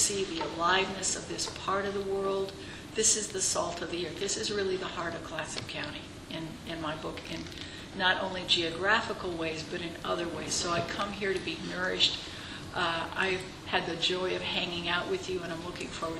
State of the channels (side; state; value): both; identical; correlation 1.00